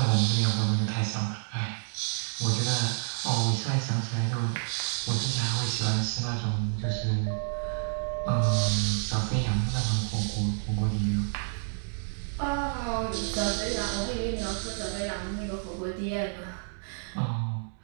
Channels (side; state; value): left; silent; digital silence